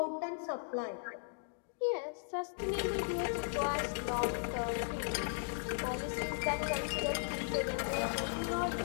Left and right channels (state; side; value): silent; right; digital silence